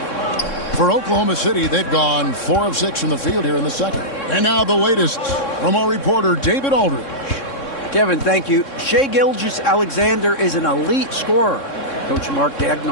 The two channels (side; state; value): right; late; 3.6 ms